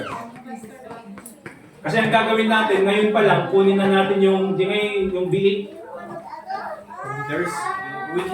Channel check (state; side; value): identical; both; correlation 1.00